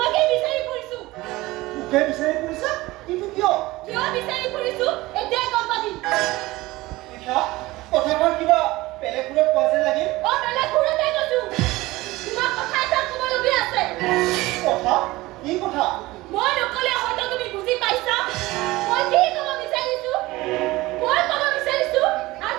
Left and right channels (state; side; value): quieter; left; 19.5 dB